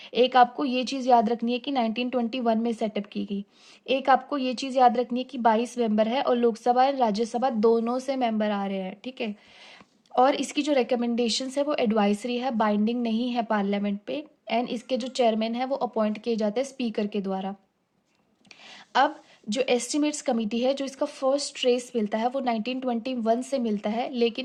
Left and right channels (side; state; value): both; identical; correlation 1.00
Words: एक आपको ये चीज़ याद रखनी है कि 1921 में सेटअप की गई। एक आपको ये चीज़ याद रखनी है कि 22 मेंबर है और लोकसभा और राज्यसभा दोनों से मेंबर आ रहे हैं, ठीक है। और इसकी जो रिकमेंडेशंस है वो एडवाइजरी है, बाइंडिंग नहीं है पार्लियामेंट पे। एंड इसके जो चेयरमैन है वो अपॉइंट किए जाते हैं स्पीकर के द्वारा। अब जो एस्टिमेट्स कमेटी है, जो इसका फर्स्ट ट्रेस मिलता है वो 1921 से मिलता है,